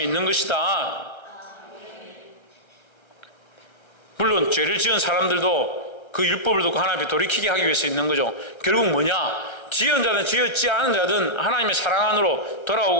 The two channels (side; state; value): right; late; 1.3 ms